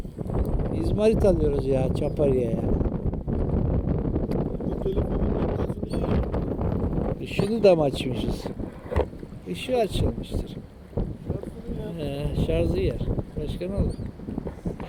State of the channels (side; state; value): both; identical; correlation 1.00